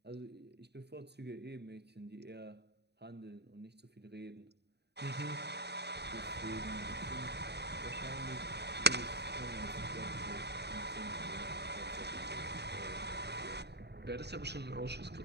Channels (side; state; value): left; late; 0.49 ms